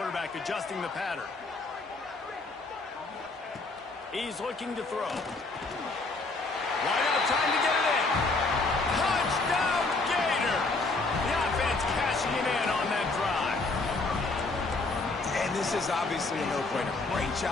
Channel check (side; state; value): right; quieter; 3.5 dB